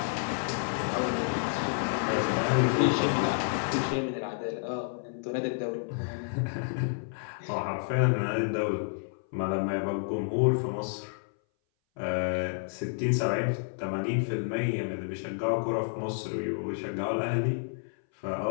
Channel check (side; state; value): right; silent; 58 dB below the other